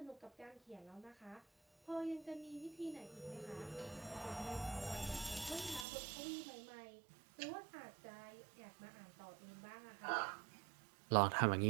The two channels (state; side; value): drops out; left; at 5.9 s